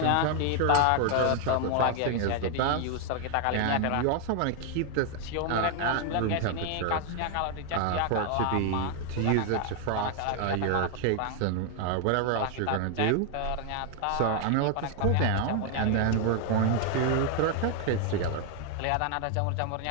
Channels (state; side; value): different; both; correlation 0.00